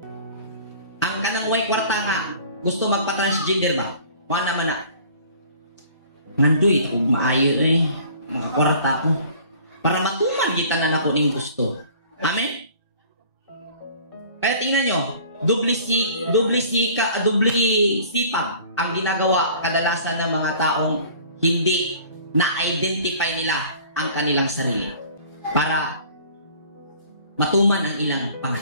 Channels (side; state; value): both; inverted; correlation -0.49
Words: Ang kanang way kwarta nga, gusto magpa-transgender ba? Mga naman na. Nandoy, ako maayo eh. Makakwarta ko. Para matuman kita na ako ng gusto. Amen? Kaya tingnan nyo, dubli sipag ang ginagawa kadalasan ng mga taong hindi na-identify nila ang kanilang sarili para matuman ang ilang